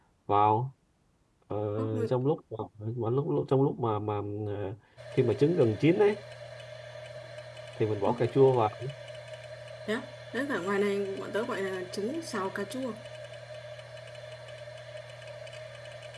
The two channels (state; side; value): identical; both; correlation 1.00